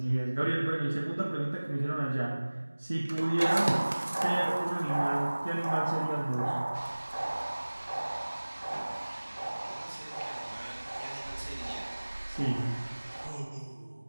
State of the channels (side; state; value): both; inverted; correlation -1.00